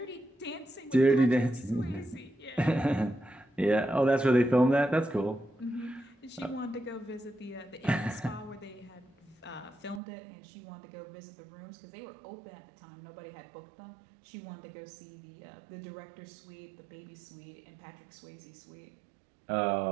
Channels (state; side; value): drops out; left; at 10.0 s